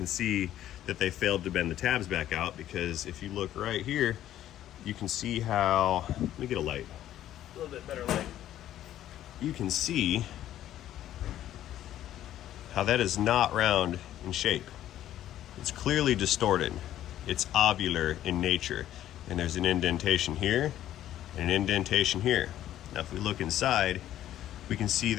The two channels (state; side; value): quieter; right; 12.4 dB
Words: see that they failed to bend the tabs back out, because if you look right here, you can see how, let me get a light, a little bit better light. You can see how that is not round in shape. It's clearly distorted. It's ovular in nature. And there's an indentation here and an indentation here. Now if we look inside, we can see